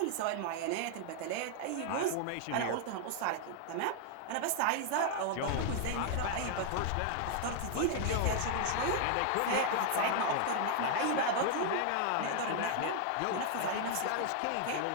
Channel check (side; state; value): both; different; correlation 0.00